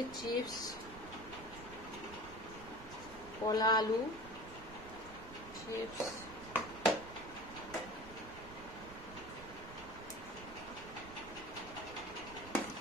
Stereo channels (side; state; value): right; noise; rumble, 14 dB below the sound